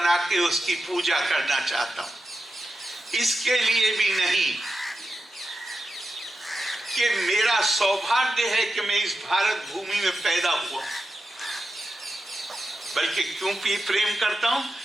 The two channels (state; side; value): normal; both; correlation 0.90